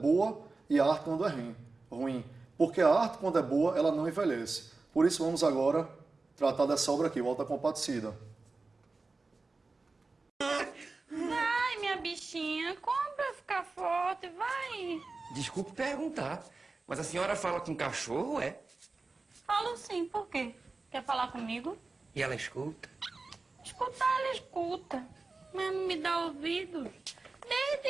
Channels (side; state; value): left; quieter; 3.7 dB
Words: e arte quando é ruim. Porque a arte, quando é boa, ela não envelhece. Por isso, vamos agora tratar dessa obra aqui, o Alta Compadecida. Vai, minha bichinha, como pra ficar forte, vai. Desculpe perguntar, mas a senhora fala com cachorro, é? Falo sim, por quê? Quer falar comigo? E ela escuta? Escutar, ela escuta, mas não me dá ouvido.